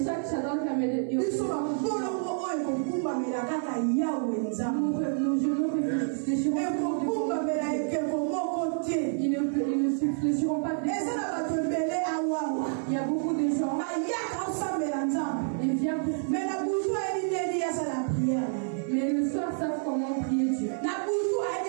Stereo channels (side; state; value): left; silent; 59 dB below the other